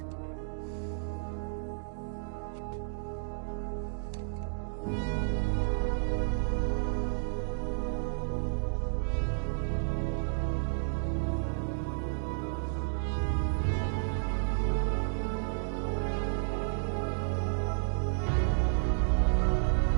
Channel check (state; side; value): silent; left; digital silence